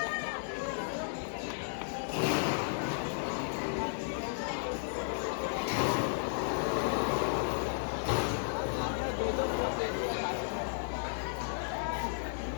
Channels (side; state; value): right; silent; digital silence